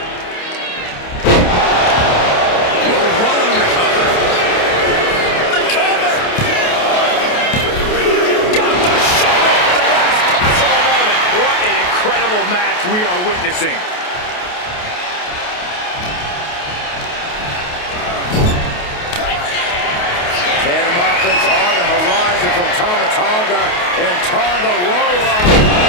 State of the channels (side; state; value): right; late; 28 ms